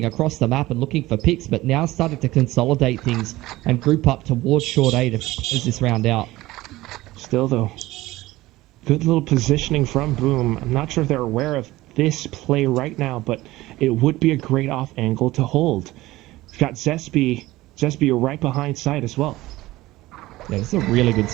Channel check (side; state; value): left; quieter; 17.9 dB